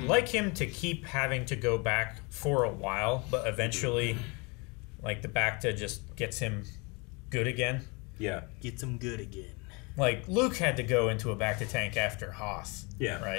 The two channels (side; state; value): right; quieter; 29.3 dB